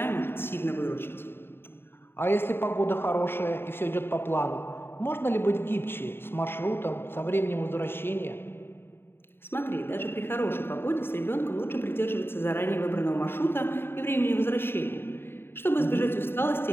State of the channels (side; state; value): right; late; 0.11 ms